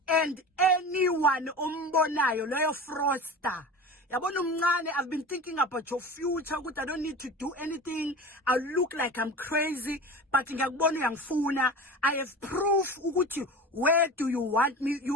and anyone ombonayo loyo fraudster yabona umncane. I've been thinking about your future ukuthi I don't need to do anything. I look like I'm crazy but ngiyakubona uyangifuna. I have proof ukuthi where do you want me.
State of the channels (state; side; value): normal; both; correlation 0.32